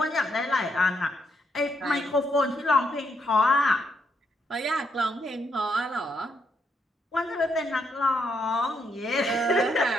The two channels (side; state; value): both; normal; correlation 0.77